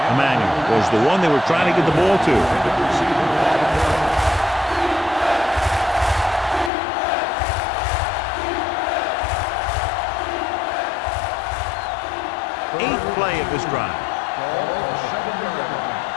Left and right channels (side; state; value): right; drops out; at 6.7 s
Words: Emmanuel was the one they were trying to get the ball to. Eighth play of this drive. Ball on the 7-yard line.